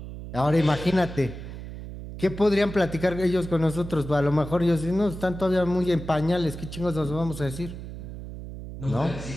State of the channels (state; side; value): noise; right; hum, 10 dB below the sound